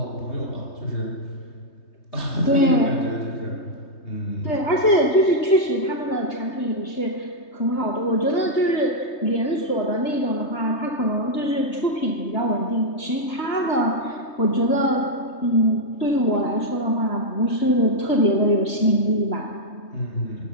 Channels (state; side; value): late; right; 3.2 ms